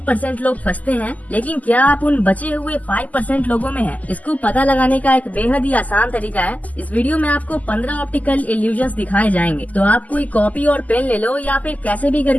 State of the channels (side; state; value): right; late; 0.077 ms